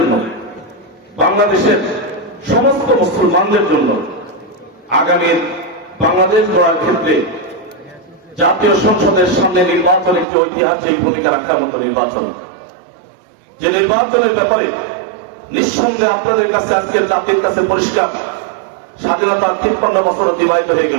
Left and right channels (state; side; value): drops out; left; at 10.2 s